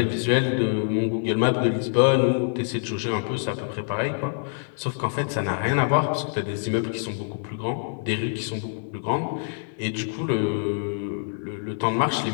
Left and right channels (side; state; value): right; silent; 61 dB below the other